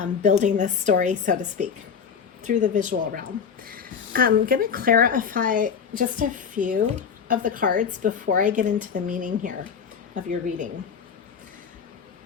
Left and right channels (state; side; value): quieter; right; 6.8 dB